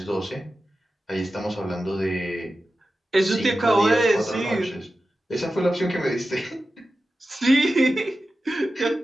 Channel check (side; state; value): both; normal; correlation 0.93